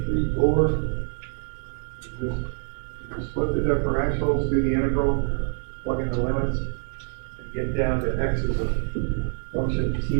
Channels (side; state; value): left; silent; digital silence